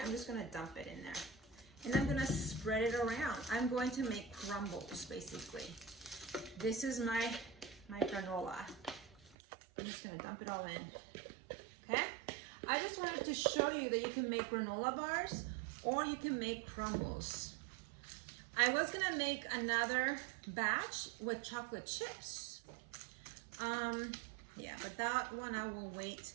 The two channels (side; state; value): left; drops out; at 9.3 s